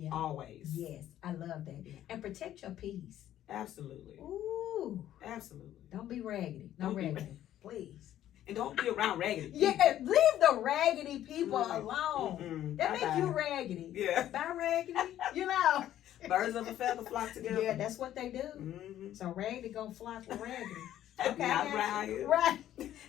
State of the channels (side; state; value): right; quieter; 12.2 dB